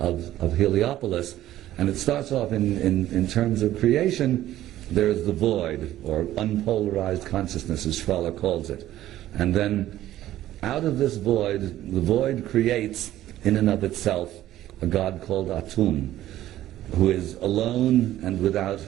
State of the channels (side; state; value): left; quieter; 13.7 dB